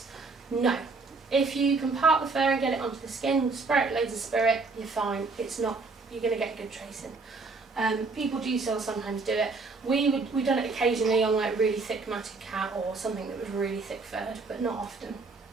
No. If you can part the fur and get it onto the skin, spray it loads of spirit, you're fine. It's not, you're going to get good tracing. People do still sometimes do it. We've done it occasionally on like really thick matted cat or something that was really thick furred, but not often.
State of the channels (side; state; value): left; quieter; 4.0 dB